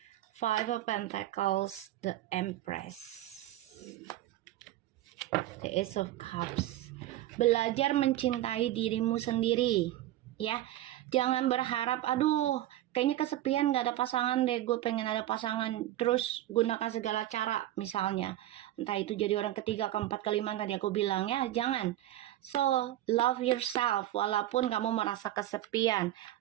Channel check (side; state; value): left; quieter; 14.2 dB